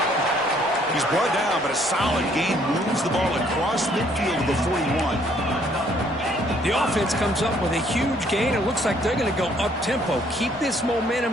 He's brought down, but a solid gain moves the ball across midfield to the 41. The offense comes up with a huge gain. It looks like they're going to go up-tempo. Keep this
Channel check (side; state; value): both; normal; correlation 0.64